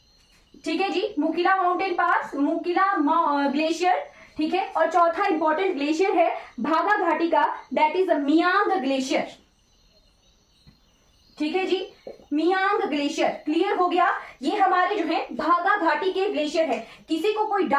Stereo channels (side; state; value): both; identical; correlation 1.00